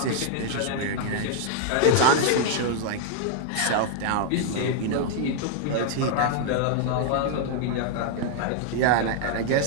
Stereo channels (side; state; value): both; different; correlation -0.01